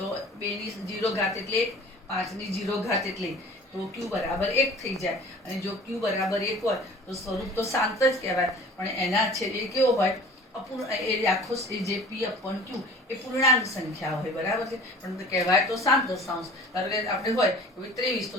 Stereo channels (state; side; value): normal; both; correlation 0.44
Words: 2ની 0 ઘાત એટલે 5ની 0 ઘાત એટલે તો Q બરાબર 1 થઈ જાય. અને જો Q બરાબર 1 હોય તો સ્વરૂપ તો શાંત જ કહેવાય, પણ એના છેદ એ કેવો હોય? આખો જે P/Q એ પૂર્ણાંક સંખ્યા હોય, બરાબર છે, પણ કહેવાય તો શાંત દશાંશ. ધારો કે આપણે હોય 23 તો